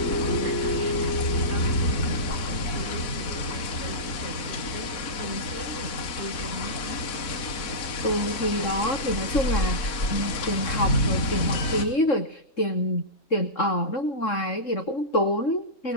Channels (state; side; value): late; right; 4.3 ms